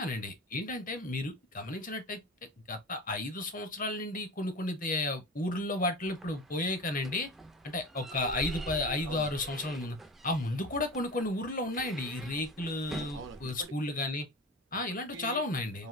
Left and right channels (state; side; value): normal; both; correlation 0.31